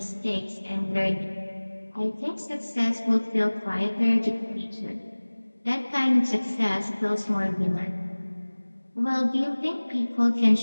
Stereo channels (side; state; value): both; inverted; correlation -1.00